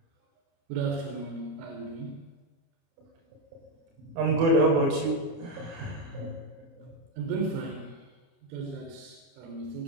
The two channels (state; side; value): late; left; 30 ms